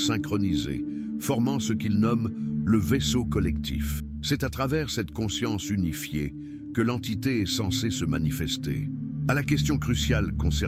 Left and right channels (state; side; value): identical; both; correlation 1.00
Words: formant ce qu'il nomme le vaisseau collectif. C'est à travers cette conscience unifiée que l'entité est censée se manifester. À la question cruciale